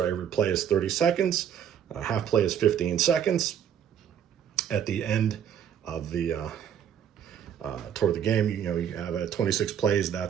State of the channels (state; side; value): quieter; left; 9.0 dB